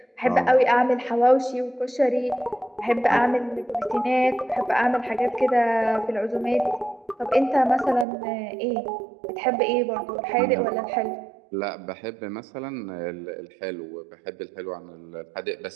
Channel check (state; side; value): drops out; left; at 8.1 s